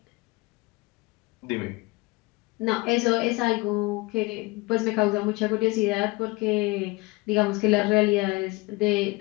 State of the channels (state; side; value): quieter; right; 23.7 dB